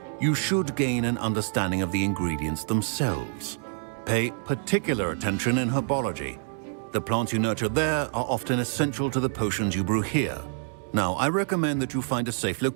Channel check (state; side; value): silent; left; 60 dB below the other